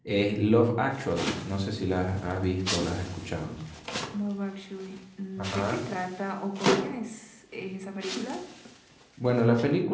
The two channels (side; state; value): both; identical; correlation 1.00